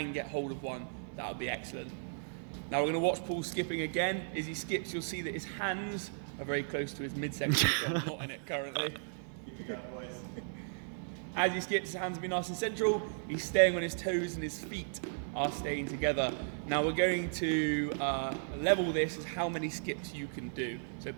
get hold of one, that would be excellent. Now we're going to watch Paul skipping again. As he skips, you'll see that his hands are very close to his midsection, so I'm not in it currently. As he skips, his hands will be nice and central. He's staying on his toes and his feet are staying together. Now we're going to level this as how many skips you can do. So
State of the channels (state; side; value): silent; left; 54 dB below the other